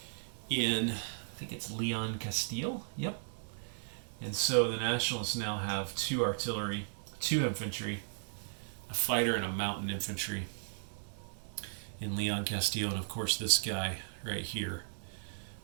in, I think it's Leon Castile. Yep. And so the Nationalists now have 2 artillery, 2 infantry, a fighter, and a mountain infantry in Leon Castile, and of course this guy right here.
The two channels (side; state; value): left; silent; 54 dB below the other